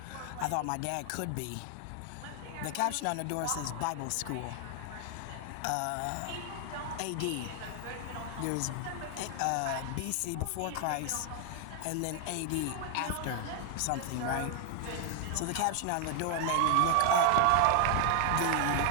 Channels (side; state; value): both; different; correlation 0.00